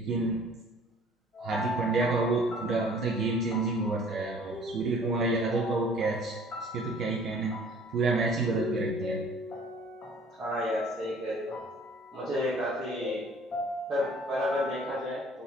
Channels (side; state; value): both; normal; correlation 0.53